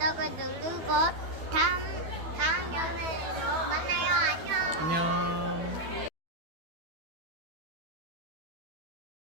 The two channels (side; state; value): left; late; 12 ms